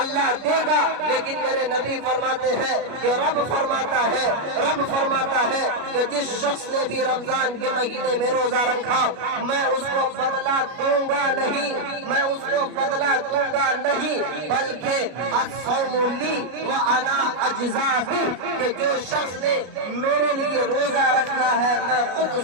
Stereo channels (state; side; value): late; left; 33 ms